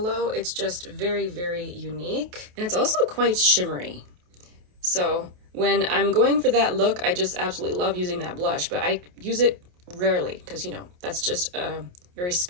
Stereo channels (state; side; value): late; left; 28 ms